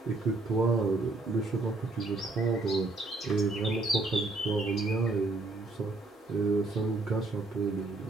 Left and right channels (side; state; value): left; quieter; 3.2 dB